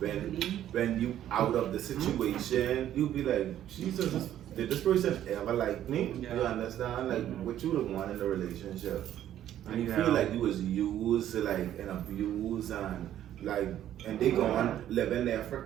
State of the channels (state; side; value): quieter; left; 11.6 dB